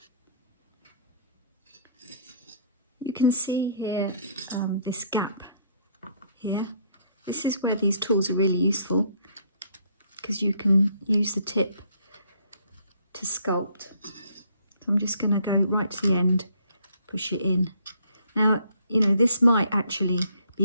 You can see here this gap here. This is where these tools are really useful because you can use the tip to sculpt. I'm just going to go right to the end, push it in. Now, you know, this might actually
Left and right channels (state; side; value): inverted; both; correlation -0.65